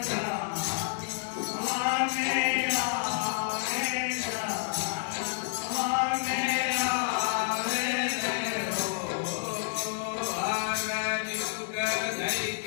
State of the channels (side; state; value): right; silent; digital silence